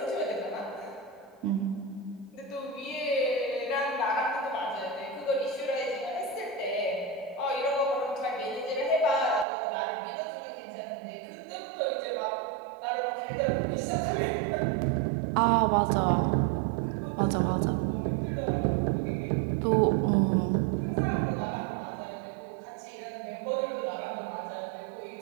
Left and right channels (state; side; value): drops out; left; at 9.5 s